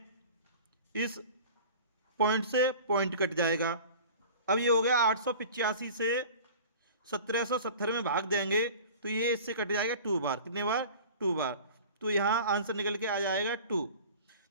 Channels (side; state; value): both; inverted; correlation -0.41